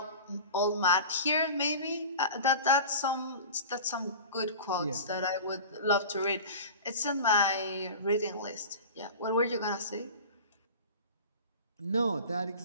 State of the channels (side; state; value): both; inverted; correlation -0.35